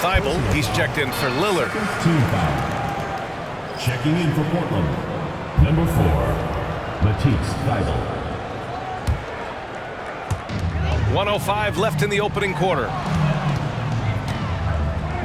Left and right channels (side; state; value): both; identical; correlation 1.00